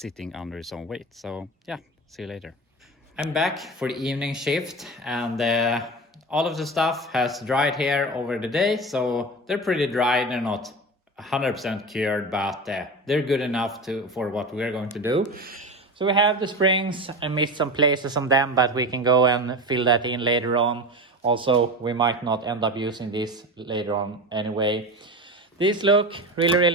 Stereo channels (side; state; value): both; normal; correlation 0.26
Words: under its own weight. So yeah, see you later. I'm back for the evening shift, and all of the stuff has dried here over the day, so they're pretty dry. They're not 100% cured, but they're good enough for what we're going to do. So we have the springs. I missed some places on them, but we can go and fill that in later on. Also, we might not end up using these later on anyway. These look really,